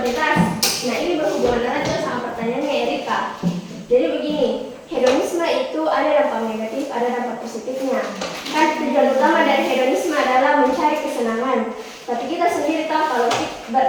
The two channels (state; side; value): identical; both; correlation 1.00